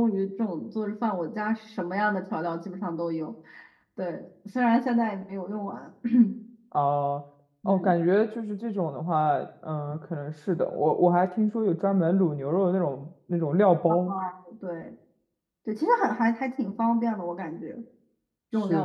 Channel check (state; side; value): identical; both; correlation 1.00